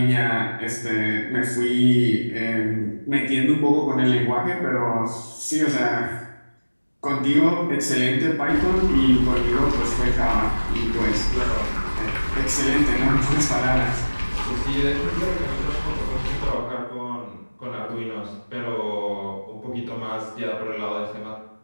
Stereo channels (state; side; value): inverted; both; correlation -1.00